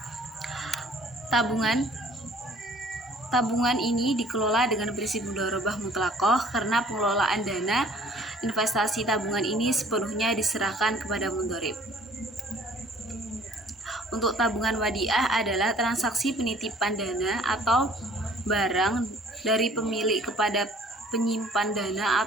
Tabungan ini dikelola dengan prinsip mudharabah mutlaqah karena pengelolaan dana investasi tabungan ini sepenuhnya diserahkan kepada mudharib. Untuk tabungan wadiah adalah transaksi penitipan dana atau barang dari pemilik kepada penyimpan dana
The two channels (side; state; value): both; normal; correlation 0.55